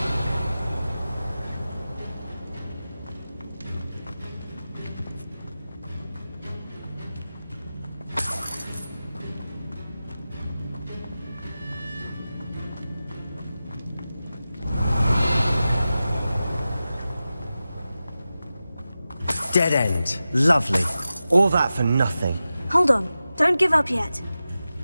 Dead end. Lovely. All that for nothing. Hold on. Don't give up yet.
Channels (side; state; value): both; inverted; correlation -0.94